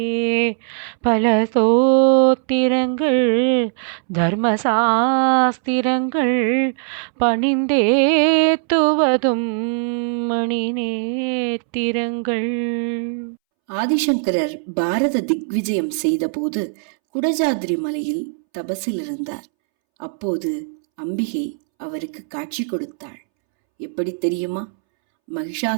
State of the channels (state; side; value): silent; left; 66 dB below the other